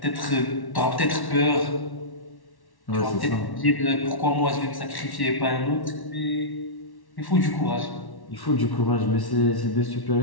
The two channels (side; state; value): right; late; 1.1 ms